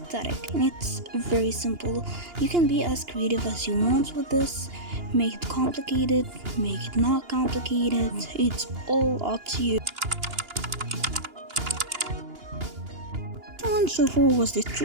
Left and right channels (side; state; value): left; late; 2.9 ms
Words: And it's very simple. You can be as creative as you want with this. Make it complicated, make it not complicated. It's all up to you. This one so far was the